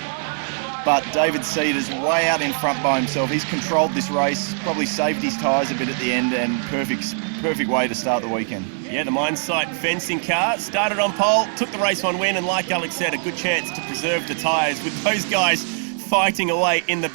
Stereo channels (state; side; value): silent; left; 61 dB below the other